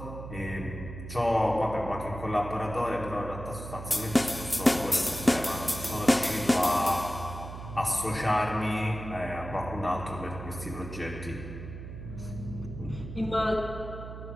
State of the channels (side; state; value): right; noise; hum, 10 dB below the sound